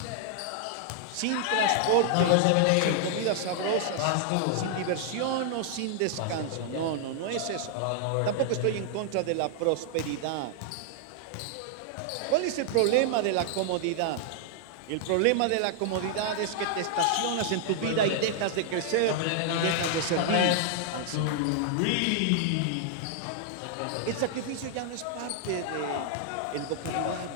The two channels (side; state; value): both; different; correlation -0.01